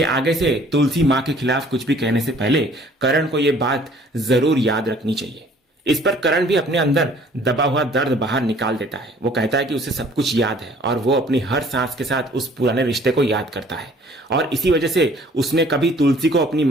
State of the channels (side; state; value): both; normal; correlation 0.55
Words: आगे से तुलसी माँ के खिलाफ कुछ भी कहने से पहले करण को यह बात जरूर याद रखनी चाहिए। इस पर करण भी अपने अंदर दबा हुआ दर्द बाहर निकाल देता है। वो कहता है कि उसे सब कुछ याद है और वो अपनी हर सांस के साथ उस पुराने रिश्ते को याद करता है और इसी वजह से उसने कभी तुलसी को अपनी